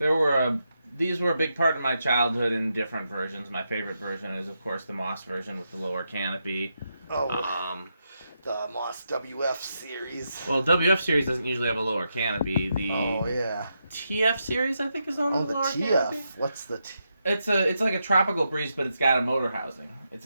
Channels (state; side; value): inverted; both; correlation -0.84